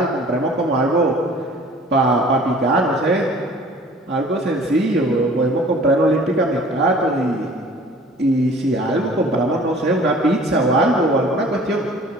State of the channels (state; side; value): normal; both; correlation 0.49